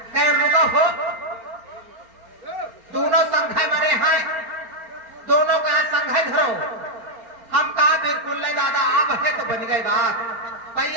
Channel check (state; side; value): late; left; 4.4 ms